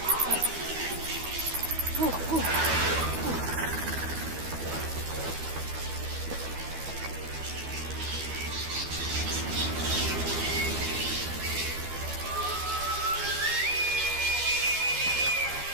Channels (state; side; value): late; left; 12 ms